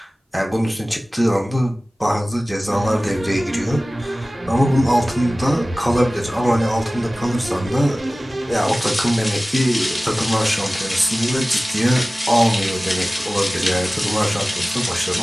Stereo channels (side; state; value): both; normal; correlation 0.97